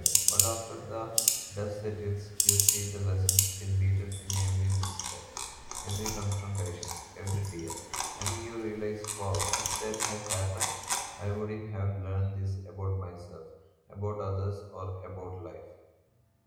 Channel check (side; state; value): both; identical; correlation 1.00